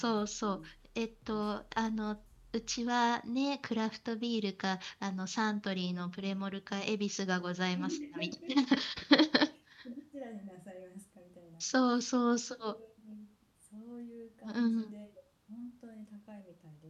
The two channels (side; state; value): both; identical; correlation 1.00